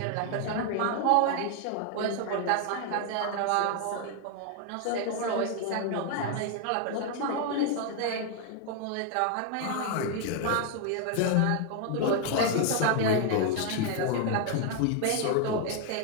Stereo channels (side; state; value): both; different; correlation 0.00